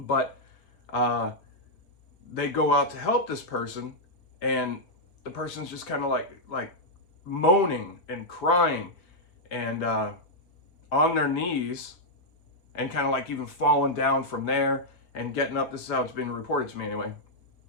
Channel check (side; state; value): right; late; 5.2 ms